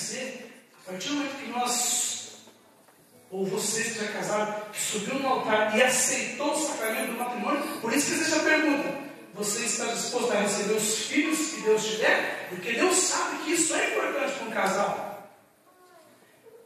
a partir do momento que nós, ou você que já é casado, que subiu no altar e aceitou o sacramento do matrimônio, por isso que existe a pergunta: você está disposto a receber os filhos que Deus te der? Porque Deus sabe que isso é importante para um casal.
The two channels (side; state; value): both; identical; correlation 1.00